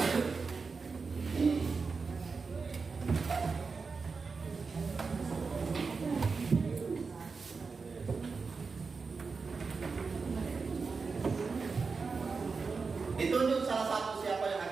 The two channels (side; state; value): left; quieter; 4.7 dB